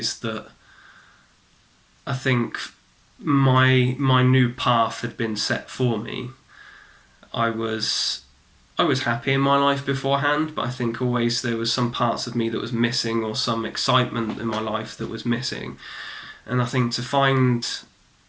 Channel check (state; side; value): identical; both; correlation 1.00